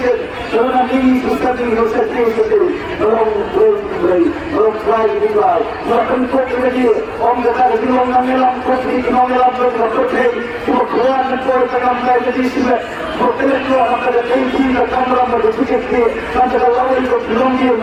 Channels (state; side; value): identical; both; correlation 1.00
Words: dalam ini susah di Indonesia sendiri, dalam beri, dalam try juga, macam kau lagi, orang kata lagi orang mengelam kopi, orang mengelam kopi, cuma keluar mentor tengah mengajar di sini, hotel itu orang kata tinggi, kamera berfikir dia, nanti kalau itu belum dia